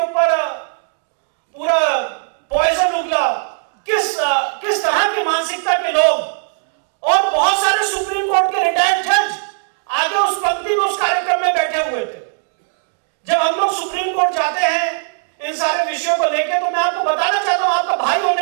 ऊपर पूरा पॉइजन उगला। किस तरह की मानसिकता के लोग, और बहुत सारे सुप्रीम कोर्ट के रिटायर्ड जज आगे उस पंक्ति में उस कार्यक्रम में बैठे हुए थे। जब हम लोग सुप्रीम कोर्ट जाते हैं इन सारे विषयों को लेकर, तो मैं आपको बताना चाहता हूं आपका भाई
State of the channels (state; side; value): silent; left; 61 dB below the other